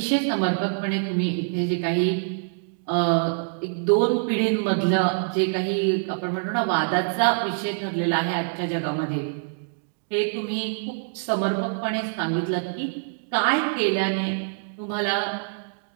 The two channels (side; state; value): left; silent; digital silence